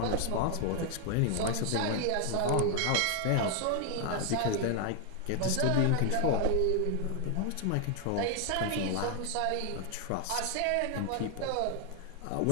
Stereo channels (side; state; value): both; different; correlation 0.00